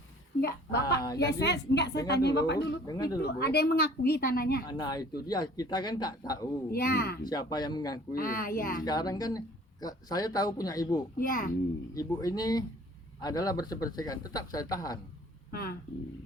Enggak, Bapak. Ya jadi, saya tanya Bapak dulu. dengar Itu dulu, Bu. ada yang mengakui tanahnya. Nah itu dia, kita kan tak tahu Ya. siapa yang mengakui. Ya. Sekarang kan saya tahu punya ibu. Ya. Ibu ini adalah bersih-bersihkan, tetap saya tahan.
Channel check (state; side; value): normal; both; correlation 0.52